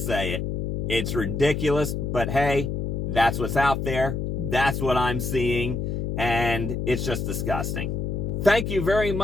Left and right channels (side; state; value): left; noise; hum, 2 dB below the sound